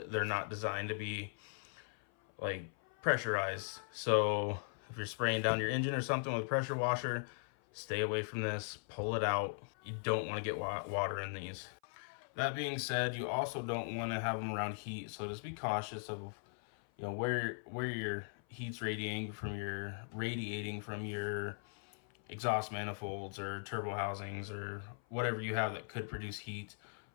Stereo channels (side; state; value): right; silent; 52 dB below the other